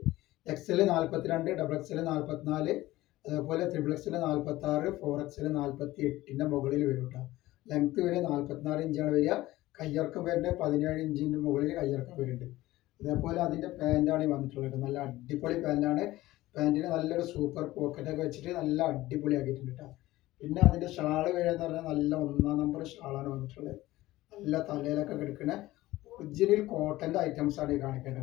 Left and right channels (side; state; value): right; quieter; 17.2 dB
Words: XL 42, XXL 44, അതേപോലെ XXL 46, 4XL 48ന്റെ മുകളിൽ വരും കേട്ടോ. ലെങ്ത് വരെ 44 ഇഞ്ചാണ് വരിക. കയ്യിറക്കം വരുന്നത് 17 ഇഞ്ചിൻ്റെ മുകളിൽ കയ്യിറക്കം വരുന്നുണ്ട്. അതേപോലെ അതിൻ്റെ പാൻറ്റാണ് വന്നിട്ടുള്ളത്. നല്ല അടിപൊളി പാൻറ്റാണ്. പാൻറ്റിന് നല്ലൊരു സൂപ്പർ പോക്കറ്റൊക്കെ വെച്ചിട്ട് നല്ല അടിപൊളിയാക്കിയിട്ടുണ്ട് കേട്ടോ. പിന്നെ അതിൻ്റെ ഷാള് വരികയെന്ന് പറഞ്ഞാൽ നല്ല 1-ാം നമ്പർ ഷാളാണ് വന്നിട്ടുള്ളത്. നല്ല തലയിലൊക്കെ കിടക്കുന്ന ഒറിജിനൽ കോട്ടൻ്റെ ഐറ്റംസാണ് ഈ